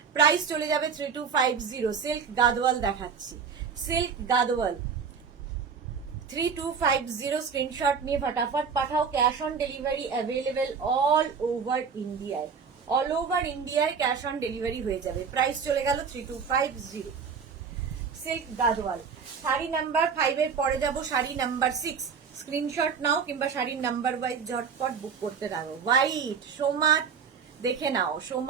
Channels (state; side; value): quieter; left; 6.2 dB